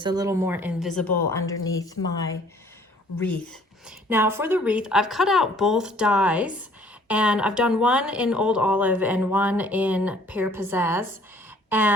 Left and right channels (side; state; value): both; normal; correlation 0.58